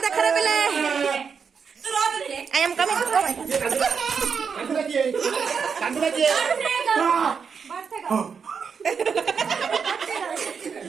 देख रे बिले आई एम कमिंग कांदुला की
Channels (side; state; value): left; quieter; 6.2 dB